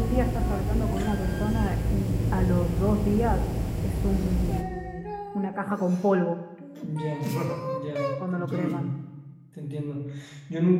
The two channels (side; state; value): both; identical; correlation 1.00